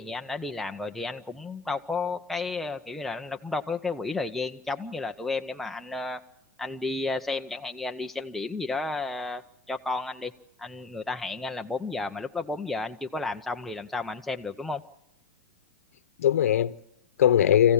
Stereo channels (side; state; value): right; quieter; 6.2 dB